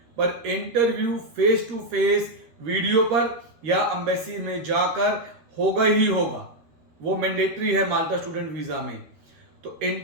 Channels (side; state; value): left; late; 13 ms